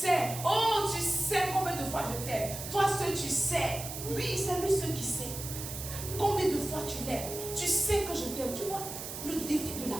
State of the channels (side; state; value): right; noise; hiss, 8 dB below the sound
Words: Oh, tu sais combien de fois je t'aime. Toi, seul, tu sais. Oui, c'est lui seul qui sait. Combien de fois tu l'aimes. Tu sais que je t'aime. Tu vois, le défi de la